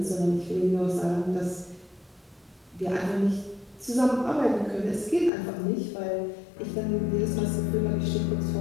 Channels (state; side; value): drops out; right; at 5.3 s